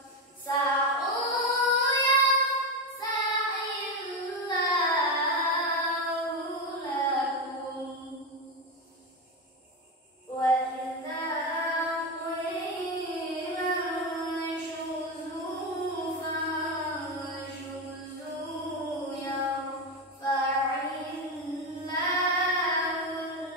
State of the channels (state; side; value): normal; both; correlation 0.13